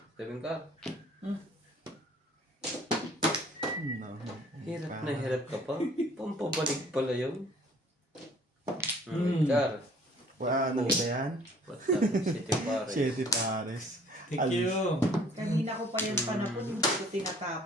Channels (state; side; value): normal; both; correlation 0.55